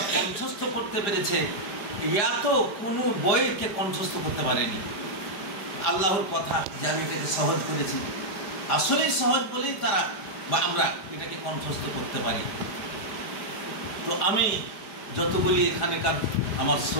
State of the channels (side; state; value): right; late; 5.0 ms